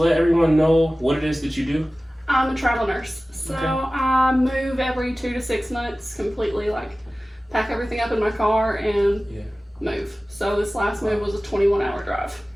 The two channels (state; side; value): normal; both; correlation 0.97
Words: everyone know what it is that you do? I'm a travel nurse, so Okay. I move every 2 to 6 months, completely pack everything up in my car and move. So this last move was a 21-hour drive.